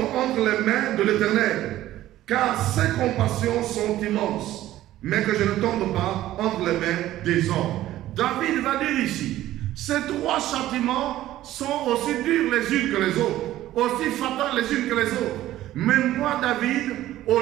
entre les mains de l'Éternel, car ses compassions sont immenses, mais que je ne tombe pas entre les mains des hommes. David va dire ici, ces 3 châtiments sont aussi durs les unes que les autres, aussi fatales les unes que les autres. Mais moi, David, au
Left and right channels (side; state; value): left; quieter; 14.3 dB